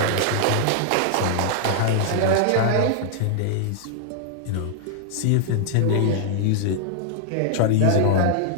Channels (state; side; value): different; both; correlation -0.01